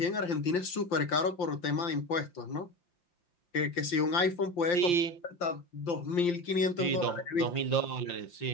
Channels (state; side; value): late; right; 5.8 ms